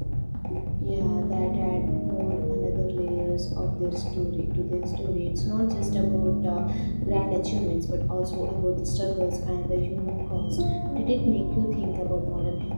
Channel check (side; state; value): both; inverted; correlation -1.00